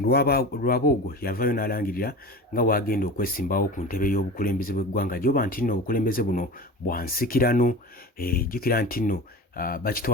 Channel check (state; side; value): normal; both; correlation 0.33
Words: yavayo n'alangirira nga wagenda okwesimbawo ku ntebe y'obukulembeze bw'eggwanga gyoba nti nno obukulembeze buno bwansikirano. Jjukira nti nno